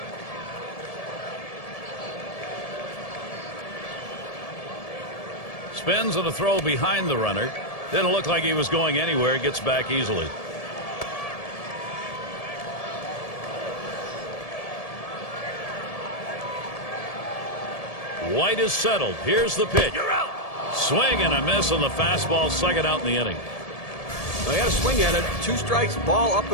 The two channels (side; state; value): right; late; 1.7 ms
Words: Spins and a throw behind the runner. Didn't look like he was going anywhere. Gets back easily. White is settled. Here's the pitch. You're out. Swing and a miss on the fastball. Second out in the inning. They had a swing at it. 2 strikes, ball up